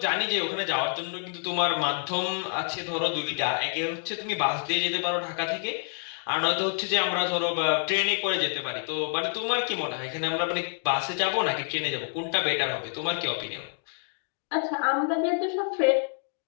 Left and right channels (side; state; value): right; silent; 59 dB below the other